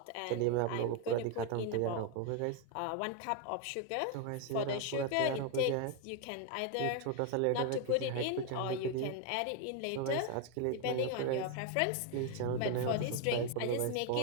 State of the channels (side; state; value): both; different; correlation 0.01